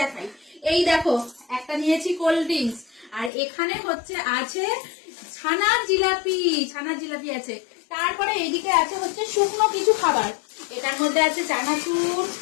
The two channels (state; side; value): drops out; right; at 3.3 s